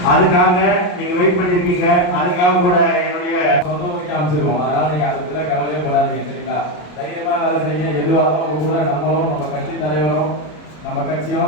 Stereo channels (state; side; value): late; right; 33 ms